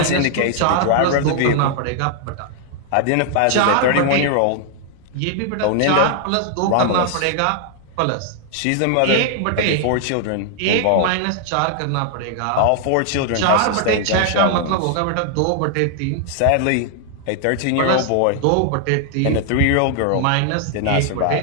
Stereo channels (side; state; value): both; different; correlation 0.00